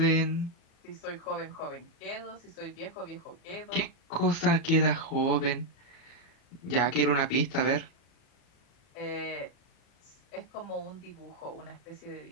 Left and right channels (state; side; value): late; right; 37 ms